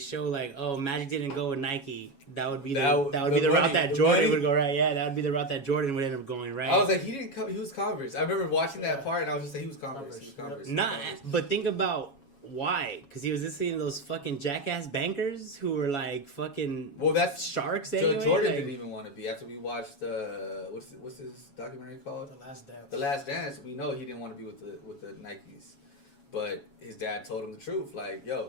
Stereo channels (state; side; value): late; right; 7.2 ms